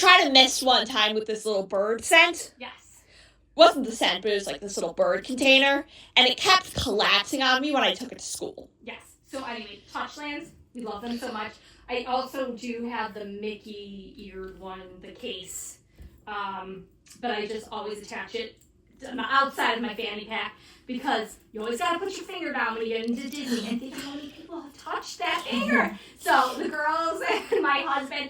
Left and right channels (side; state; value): both; identical; correlation 1.00